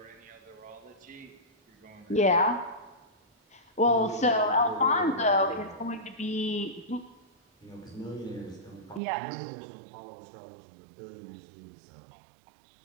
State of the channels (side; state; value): left; drops out; at 9.0 s